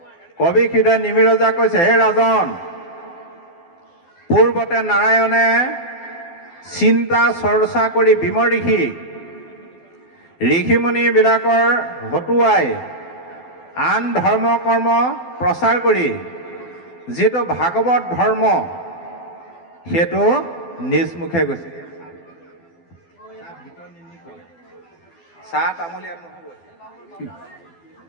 কবি হৃদয় নিমিৰজা কৈছে, হে ৰাজন, পূৰ্বতে নাৰায়ণে চিন্তা চৰ্চা কৰি বিমৰ্ষি ঋষিমুনিবিলাকৰ হতুৱাই আন ধৰ্ম কৰ্ম প্ৰচাৰ কৰি যিটো ভাগৱত ধৰ্ম সেইটো নিজ মুখে গৈছে। চাহ তামোল ইয়াত নহ'ব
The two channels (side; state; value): right; late; 12 ms